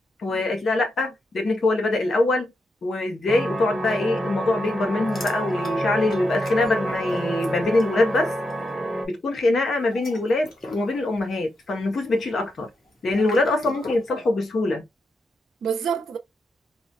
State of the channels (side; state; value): both; normal; correlation 0.84